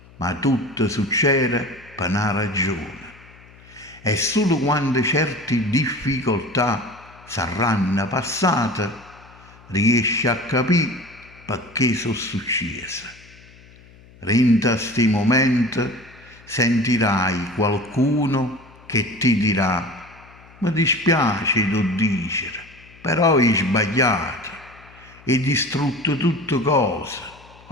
Ma tutto succede per una ragione. E solo quando certe difficoltà saranno passate, riesci a capire perché sono successe. Rinda sti momenti sentirai qualcuno che ti dirà: mi dispiace tu dicere, però hai sbagliato, hai distrutto tutte cose,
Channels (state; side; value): noise; left; hum, 24 dB below the sound